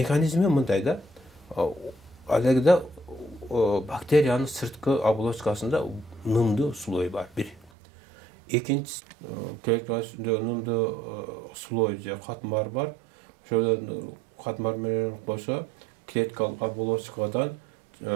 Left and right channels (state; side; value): drops out; left; at 7.7 s